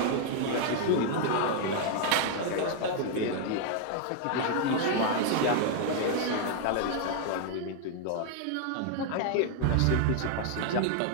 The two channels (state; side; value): different; both; correlation 0.00